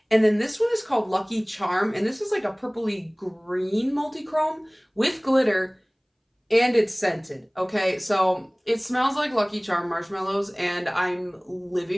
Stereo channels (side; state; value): both; identical; correlation 1.00